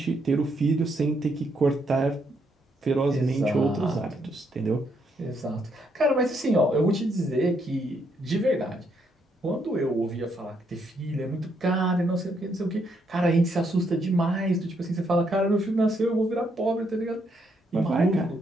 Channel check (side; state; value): both; normal; correlation 0.75